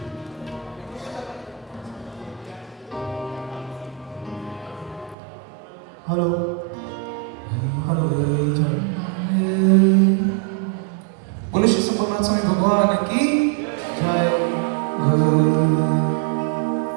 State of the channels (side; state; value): left; drops out; at 5.2 s